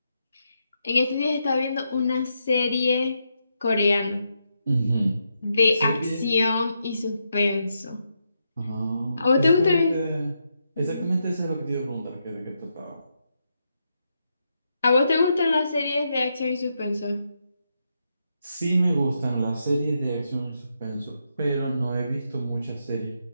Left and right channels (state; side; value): inverted; both; correlation -0.82